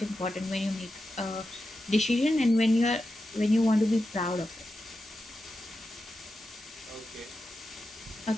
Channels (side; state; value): both; normal; correlation 0.90